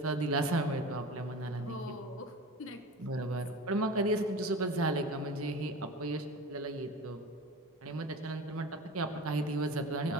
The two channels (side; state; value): both; normal; correlation 0.34